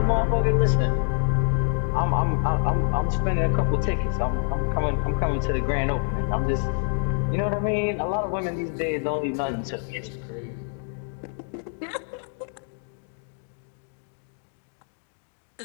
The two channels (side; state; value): right; silent; 61 dB below the other